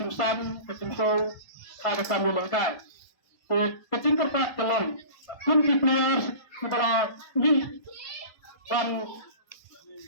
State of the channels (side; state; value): right; late; 1.4 ms